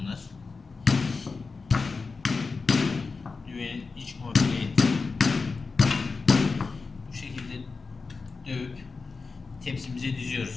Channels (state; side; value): quieter; right; 4.4 dB